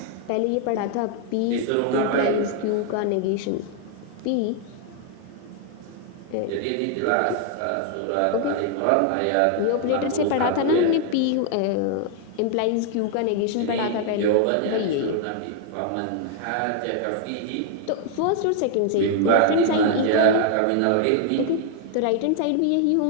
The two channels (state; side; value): different; both; correlation 0.00